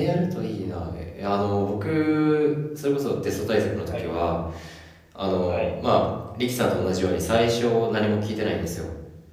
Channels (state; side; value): identical; both; correlation 1.00